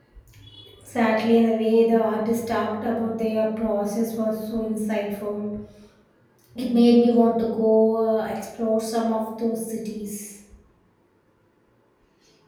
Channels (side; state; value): both; identical; correlation 1.00